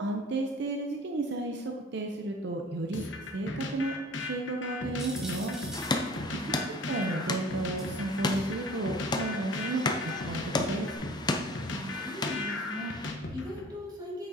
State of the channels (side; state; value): both; normal; correlation 0.46